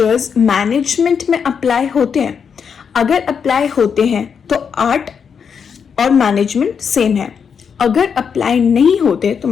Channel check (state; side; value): quieter; right; 6.7 dB